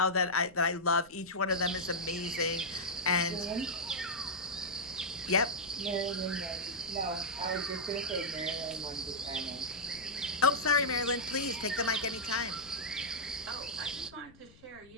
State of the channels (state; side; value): noise; left; rumble, 25 dB below the sound